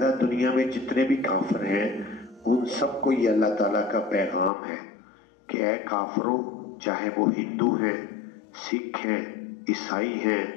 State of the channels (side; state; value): right; drops out; at 4.5 s